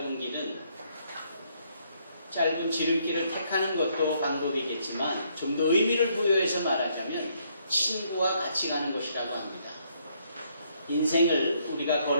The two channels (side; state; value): both; inverted; correlation -0.70